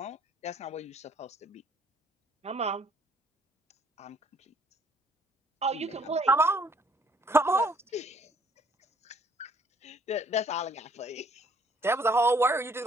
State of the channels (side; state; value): both; normal; correlation 0.60